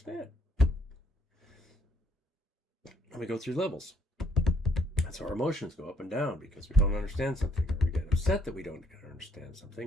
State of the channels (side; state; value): both; normal; correlation 0.68